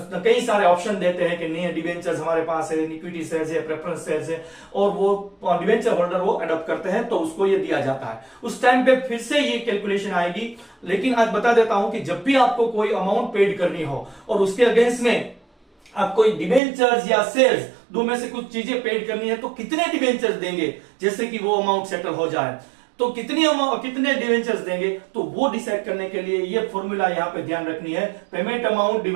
कई सारे ऑप्शन देते हैं कि नहीं डिबेंचर्स हमारे पास है, इक्विटी शेयर्स है, प्रेफरेंस शेयर्स है, और वो डिबेंचर होल्डर वो अडॉप्ट करते हैं तो उसको ये दिया जाता है। उस टाइम पे फिर से ये कैलकुलेशन आएगी। लेकिन आज बता देता हूं कि जब भी आपको कोई अमाउंट पेड करनी हो और उसके अगेंस्ट में आप कोई डिबेंचर्स या शेयर्स दो में से कुछ चीजें पेड करनी है, तो कितने डिबेंचर्स देंगे जैसे कि वो अमाउंट सेटल हो जाए, तो कितने डिवेंचर्स देंगे, तो वो डिसाइड करने के लिए ये फॉर्मूला यहां पे ध्यान रखनी है, payment amount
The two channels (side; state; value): left; drops out; at 16.6 s